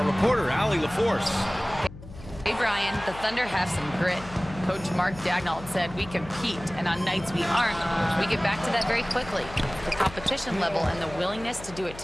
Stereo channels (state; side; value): noise; left; hum, 15 dB below the sound